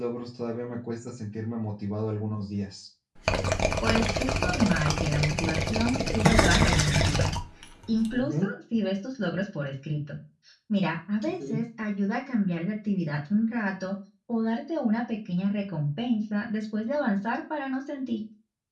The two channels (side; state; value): both; identical; correlation 1.00